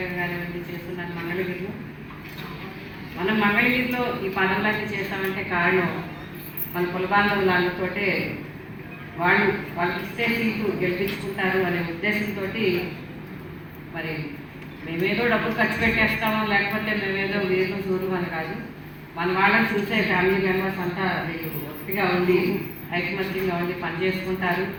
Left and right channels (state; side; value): identical; both; correlation 1.00